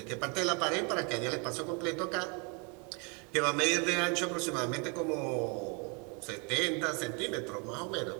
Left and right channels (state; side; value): quieter; left; 32.5 dB